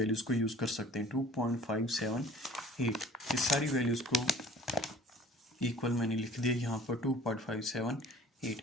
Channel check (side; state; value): both; normal; correlation 0.49